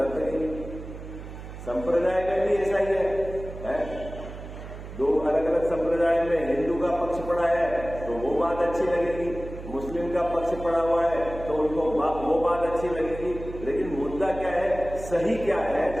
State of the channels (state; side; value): noise; right; hum, 12 dB below the sound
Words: लगेगी। संप्रदाय में भी ऐसा ही है? दो अलग अलग संप्रदाय में हिंदू का पक्ष पड़ा है तो वो बात अच्छी लगेगी, मुस्लिम का पक्ष पड़ा हुआ है तो उनको वो बात अच्छी लगेगी। लेकिन मुद्दा क्या है, सही क्या है,